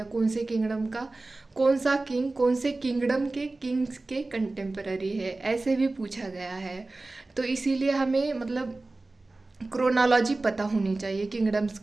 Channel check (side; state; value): left; quieter; 3.2 dB